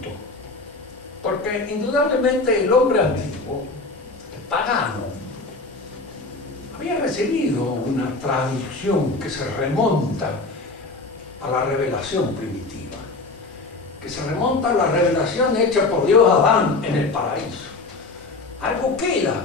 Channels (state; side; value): quieter; right; 3.4 dB